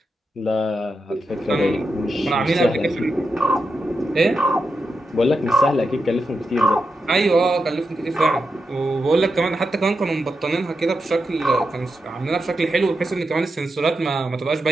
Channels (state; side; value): normal; both; correlation 0.87